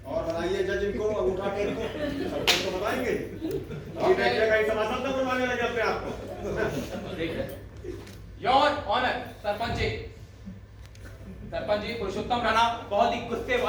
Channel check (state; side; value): identical; both; correlation 1.00